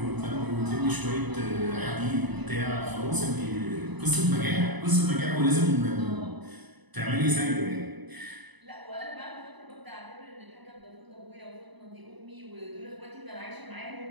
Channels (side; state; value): left; late; 1.0 ms